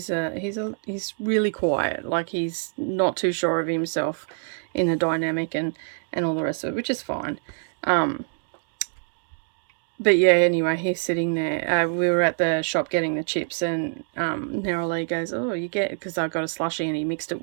really quiet. Like, he's not too sure of himself in the dynamic and all the rest of it, which is fine. But yeah, anyway, he's sitting there. We were at the shop getting the chips, and Neroli goes, "Oh, you get," because I got a slushie and he mixed it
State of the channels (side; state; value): left; silent; 62 dB below the other